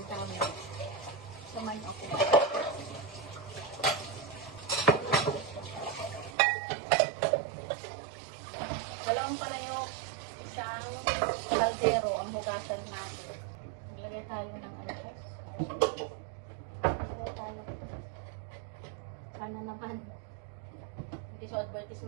mo. Samayin ako. Dalawang pala yung isang kaldero ang hugasan natin. Maglagay tayo ng alpas. Maglagay tayo. Sana naman. Hindi siya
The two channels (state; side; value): drops out; left; at 6.4 s